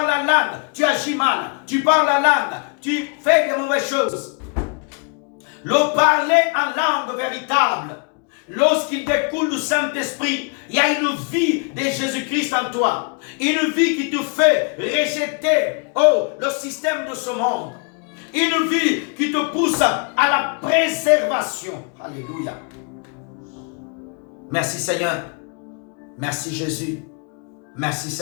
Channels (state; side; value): quieter; right; 35.9 dB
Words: à langue, tu agis mal. Tu parles à langue, tu fais de mauvaises choses. Le parler en langue véritable, lorsqu'il découle du Saint-Esprit, il y a une vie de Jésus-Christ en toi. Une vie qui te fait rejeter le système de ce monde. Une vie qui te pousse à la préservation. Alléluia. Merci Seigneur. Merci Jésus. Merci